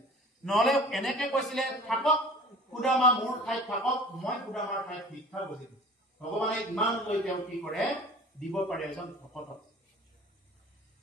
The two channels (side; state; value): both; normal; correlation 0.43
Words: নহলে এনেকে কৈছিলে থাকক সুদামা মোৰ ঠাইত থাকক মই সুদামাৰ ঠাইত ভিক্ষা বুজিম ভগৱানে ইমান লৈ তেওঁ কি কৰে দিব পাৰে এজন ভকতক